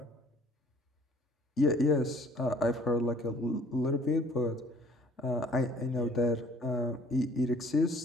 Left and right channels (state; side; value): normal; both; correlation 0.56